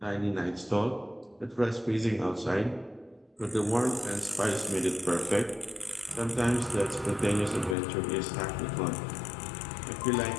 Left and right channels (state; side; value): drops out; right; at 7.8 s